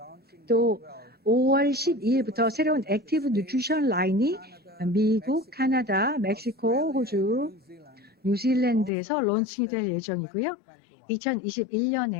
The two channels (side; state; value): right; drops out; at 8.9 s